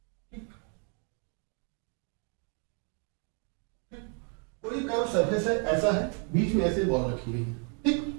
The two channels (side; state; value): left; quieter; 36.7 dB